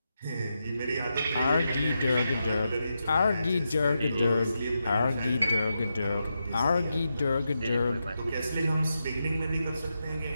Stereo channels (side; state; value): both; inverted; correlation -0.86